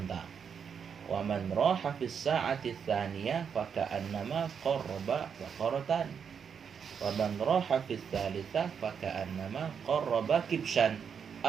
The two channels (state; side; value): quieter; left; 7.0 dB